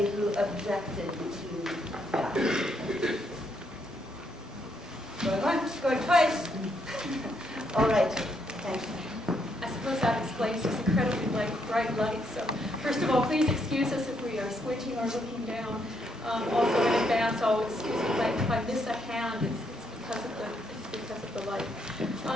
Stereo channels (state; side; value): normal; both; correlation 0.75